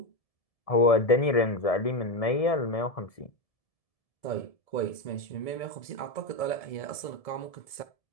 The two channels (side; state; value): right; late; 1.7 ms